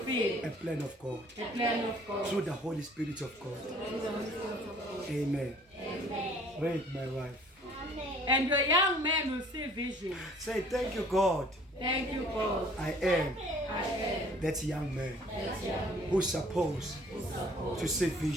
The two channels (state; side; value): normal; both; correlation 0.54